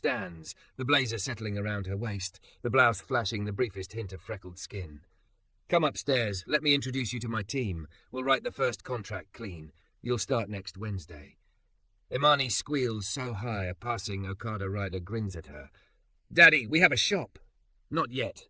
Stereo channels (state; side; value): identical; both; correlation 1.00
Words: the blazer settling around her waist, the blouse flashing the briefest hint of freckled skin. Come upstairs. Let me introduce you to my team. We'll write the first contract clean. You'll start next Wednesday. Imani squeals so high a passing Okada rider grins at her. Daddy, we have a shop. Not yet,